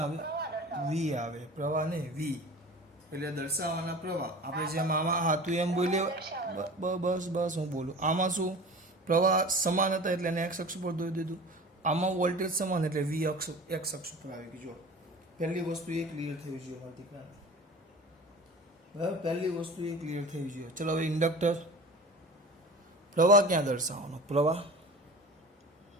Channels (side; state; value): both; normal; correlation 0.38